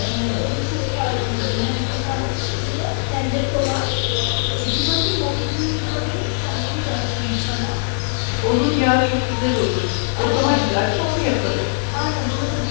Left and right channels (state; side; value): silent; right; digital silence